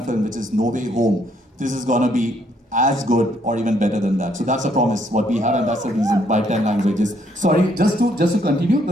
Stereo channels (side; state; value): both; normal; correlation 0.69